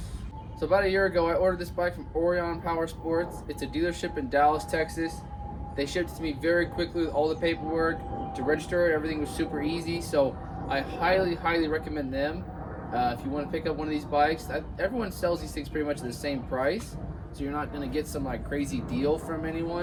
So about a year ago I ordered this bike from Orion Power Sports. It's a dealership in Dallas, Texas. They shipped it to me very quickly with all the paperwork. To register it, everything was super easy, so I highly recommend them. If you want to pick up one of these bikes, everyone sells these things pretty much at the same price. So you're not going to get some like crazy deal from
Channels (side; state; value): both; identical; correlation 1.00